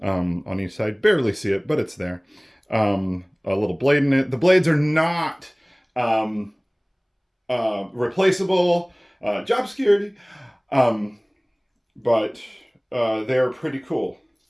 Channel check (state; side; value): identical; both; correlation 1.00